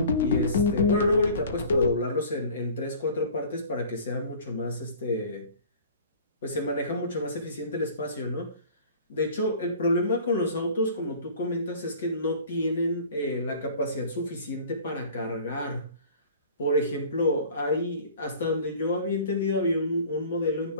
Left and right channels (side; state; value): both; inverted; correlation -0.45